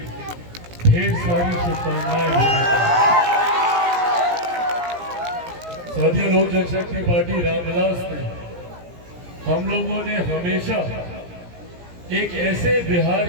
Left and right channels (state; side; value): late; left; 17 ms